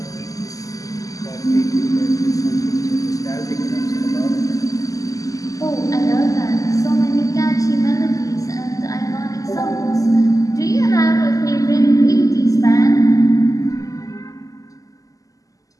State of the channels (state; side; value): late; right; 0.17 ms